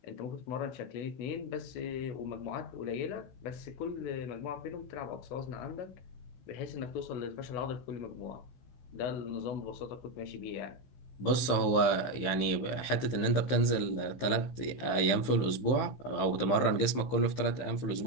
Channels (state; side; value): late; right; 15 ms